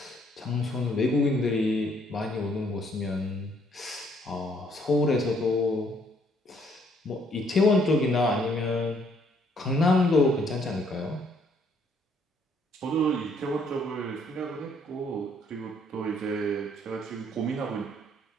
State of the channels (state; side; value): normal; both; correlation 0.67